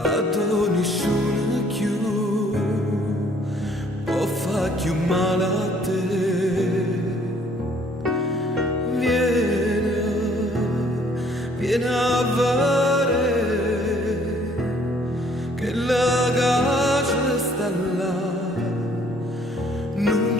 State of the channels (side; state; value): both; normal; correlation 0.61